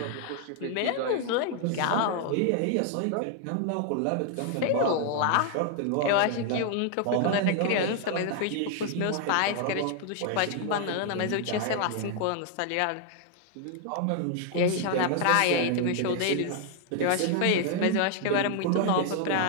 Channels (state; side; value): different; both; correlation 0.00